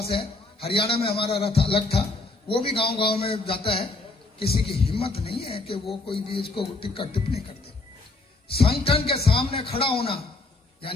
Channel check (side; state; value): right; quieter; 3.2 dB